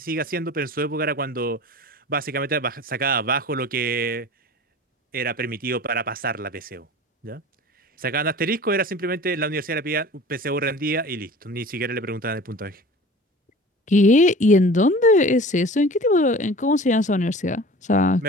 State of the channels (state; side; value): normal; both; correlation 0.41